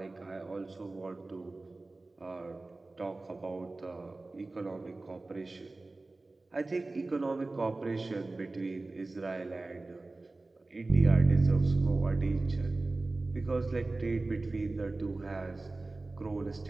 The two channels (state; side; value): quieter; left; 3.2 dB